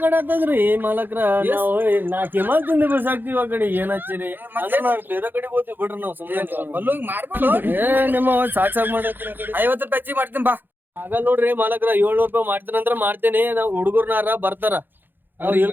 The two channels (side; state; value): left; late; 0.094 ms